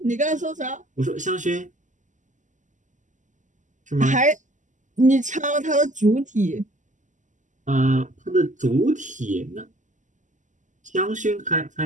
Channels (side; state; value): left; late; 0.36 ms